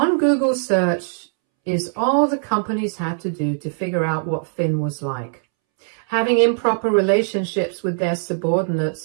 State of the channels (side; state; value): left; silent; 65 dB below the other